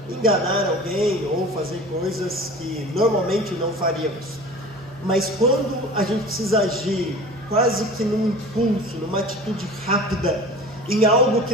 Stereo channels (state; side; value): normal; both; correlation 0.39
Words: enganar alguém ou fazer coisas que normalmente não faríamos. Mas quando a gente precisa agir quase que num impulso, numa atitude rápida, em algo